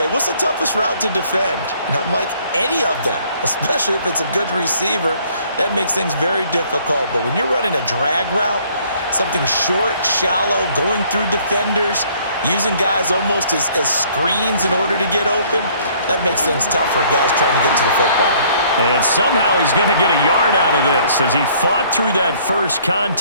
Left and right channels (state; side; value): inverted; both; correlation -0.60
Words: what's the toughest route to defend? And I'm like, any of them, especially if it's a good receiver. That makes things very difficult. But when you're running a drag route, something short, shallow, going through defenders, using guys almost as screens in order to get open, that makes things tough for guys trying to get to the football. And somehow he's going to get a yard out of this as he fought through that first